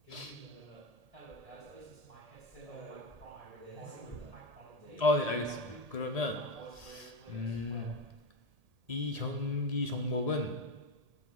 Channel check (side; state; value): left; late; 1.8 ms